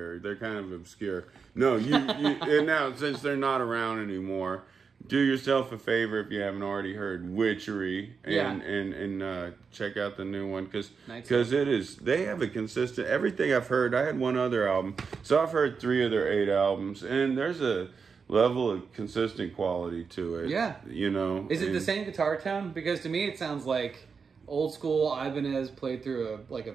they're kind of obscure. No, you and now since they're not around anymore, do yourself a favor if you haven't already heard Witchery and check out the new one because it is, they have a consistent, everything I've heard. I had one other album, so I've heard 3 of their 8 albums, and there's a level of consistent quality to it. Yeah. You know. Is it the same guitar tone? Because to me it sounds like old school Ibanez played through a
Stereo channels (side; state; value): left; quieter; 5.5 dB